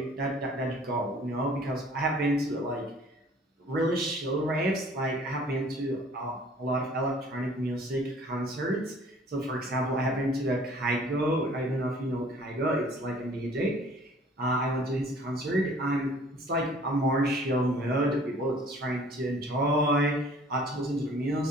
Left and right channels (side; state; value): both; normal; correlation 0.53